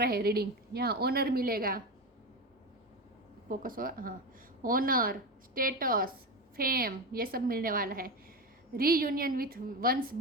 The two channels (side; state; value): both; normal; correlation 0.20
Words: हैं रीडिंग। यहाँ ऑनर मिलेगा, फोकस हो, हाँ, ऑनर, स्टेटस, फेम, ये सब मिलने वाला है। रीयूनियन विथ वंस